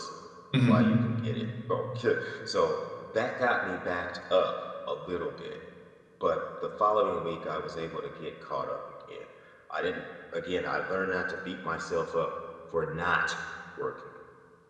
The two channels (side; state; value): both; identical; correlation 1.00